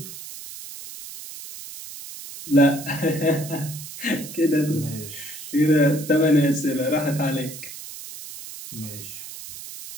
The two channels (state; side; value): noise; right; hiss, 12 dB below the sound